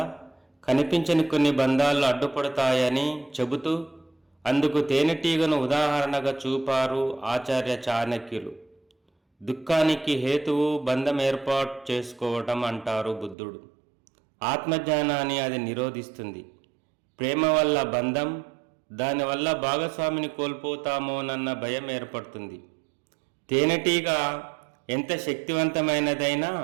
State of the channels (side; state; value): left; drops out; at 13.4 s